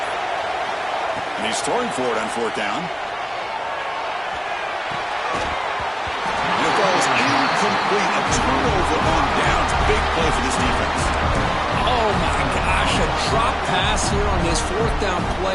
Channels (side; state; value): both; identical; correlation 1.00